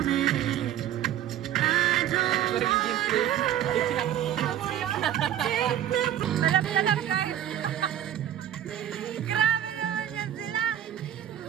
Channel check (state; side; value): quieter; left; 11.2 dB